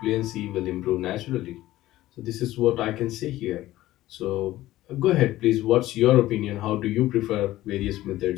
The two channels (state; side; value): quieter; right; 15.8 dB